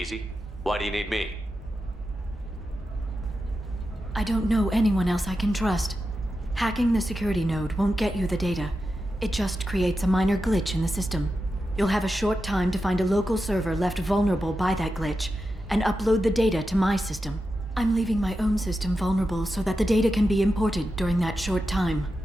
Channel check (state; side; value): normal; both; correlation 0.90